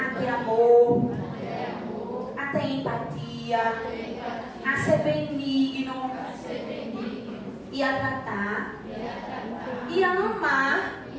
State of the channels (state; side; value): identical; both; correlation 1.00